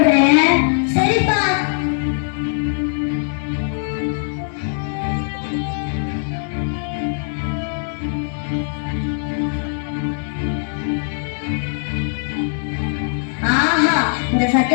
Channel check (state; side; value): silent; right; 63 dB below the other